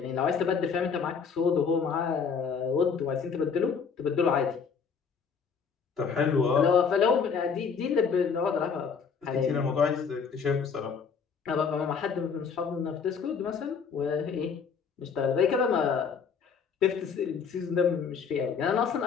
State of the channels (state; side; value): quieter; right; 6.1 dB